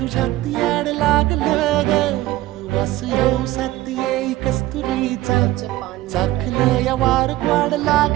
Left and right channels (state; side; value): quieter; left; 16.2 dB